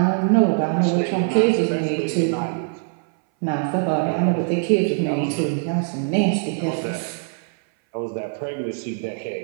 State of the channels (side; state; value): left; silent; 61 dB below the other